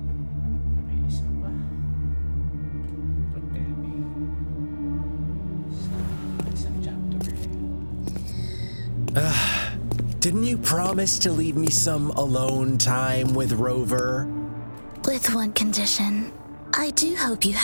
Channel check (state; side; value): inverted; both; correlation -1.00